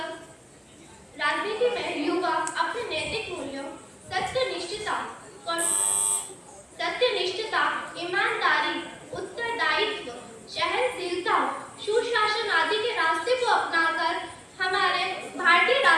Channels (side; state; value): both; identical; correlation 1.00